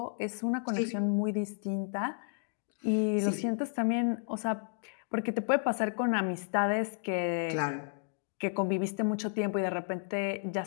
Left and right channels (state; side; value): silent; right; digital silence